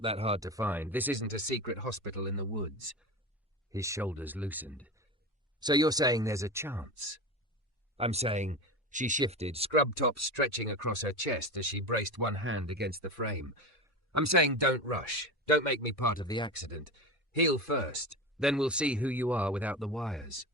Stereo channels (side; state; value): both; normal; correlation 0.25